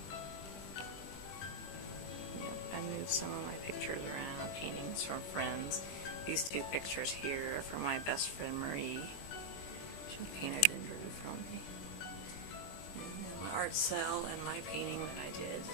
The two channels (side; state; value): right; late; 21 ms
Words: I moved some of my pictures around, paintings from friends. These two pictures here are from my best friend Marie. She painted and drew from me. And then my art cell and my painting that I did